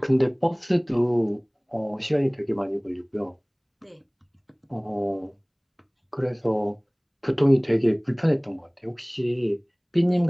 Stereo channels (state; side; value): identical; both; correlation 1.00